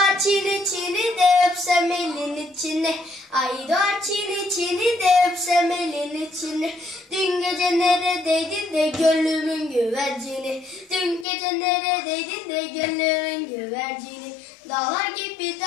çini de öpsem elin içine. Ay doğar çini de öpsem elin içine. Dün gece neredeydin de gönlümün güvercini. Dün gece neredeydin de gönlümün güvercini. Dağlar gibi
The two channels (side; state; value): right; drops out; at 11.2 s